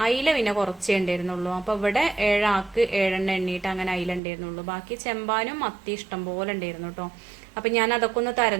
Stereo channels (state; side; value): drops out; left; at 4.2 s